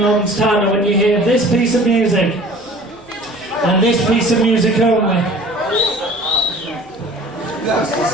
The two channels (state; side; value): noise; left; hum, 28 dB below the sound